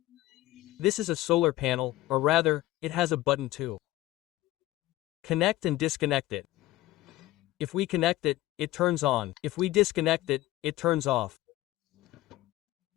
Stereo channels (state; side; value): quieter; right; 16.5 dB